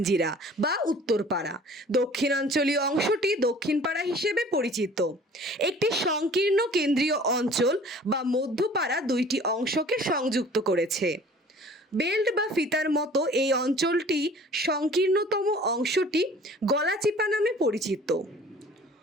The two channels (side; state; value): both; normal; correlation 0.49